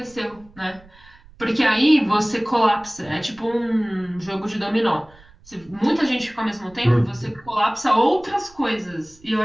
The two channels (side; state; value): right; noise; rumble, 25 dB below the sound